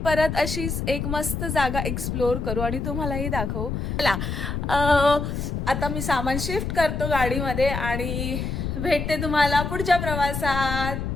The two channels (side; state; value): left; noise; rumble, 3 dB below the sound